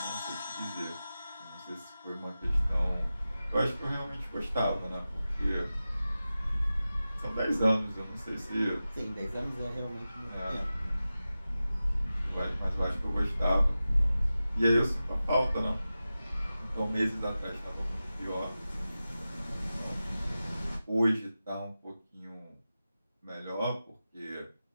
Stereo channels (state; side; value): inverted; both; correlation -0.94